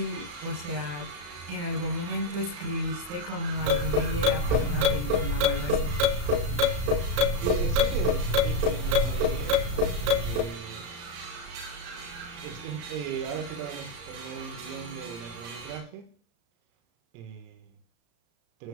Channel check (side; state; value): left; late; 34 ms